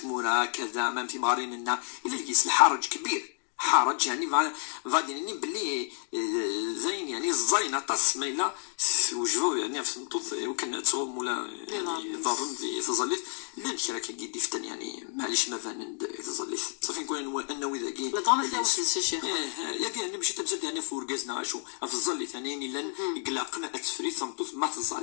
كذا ما في مارين لنا إلا لقيس الحرج كبير حرج يعني فاديني بلي زين يعني الزينة تص ميلا وجهو يعني في المطوط وكان تصوم ولا يعني ضرن في تظليت لان كرا كيدي فتن يعني معليش ما فان تظليت صافي نكون انه اذا كي لا ضربت لا واحد الشيخ ياك انا مشي تمسك يعني فورغازنا شو في الظليت يعني لان قلقنا التفريط مطوط ما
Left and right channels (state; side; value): silent; right; 58 dB below the other